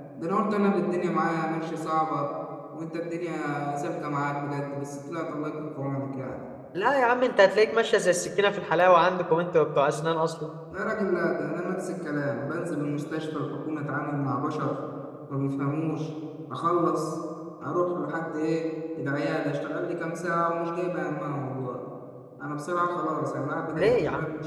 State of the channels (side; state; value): both; identical; correlation 1.00